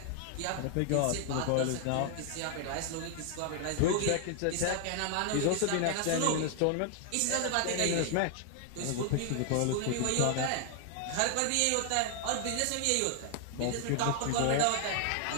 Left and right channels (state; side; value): different; both; correlation 0.00